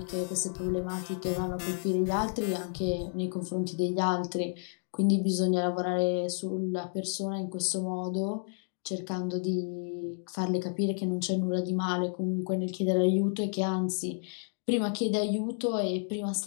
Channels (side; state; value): right; silent; 57 dB below the other